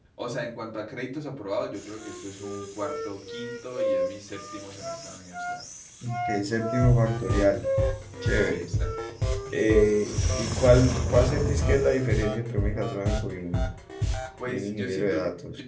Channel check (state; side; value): identical; both; correlation 1.00